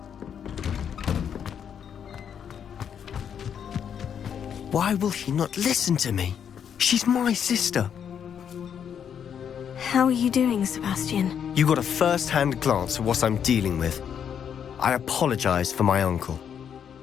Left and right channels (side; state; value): right; quieter; 8.2 dB